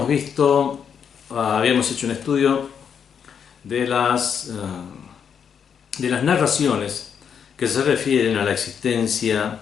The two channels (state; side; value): quieter; right; 7.4 dB